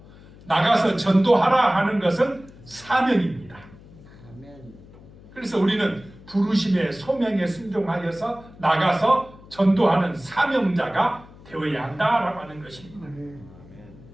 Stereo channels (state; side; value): noise; left; hum, 21 dB below the sound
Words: 나가서 전도하라 하는 것은 사명입니다. 그래서 우리는 부르심의 소명에 순종하여서 나가서 전도하는 사명자가 되어야 한다라고 하는 것입니다.